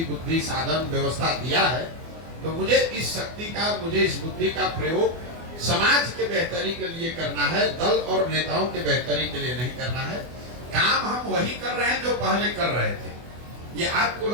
बुद्धि, साधन, व्यवस्था दिया है तो मुझे इस शक्ति का, मुझे इस बुद्धि का प्रयोग समाज के बेहतरी के लिए करना है, दल और नेताओं के बेहतरी के लिए नहीं करना है। काम हम वही कर रहे हैं जो पहले कर रहे थे। ये आपको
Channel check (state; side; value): late; left; 24 ms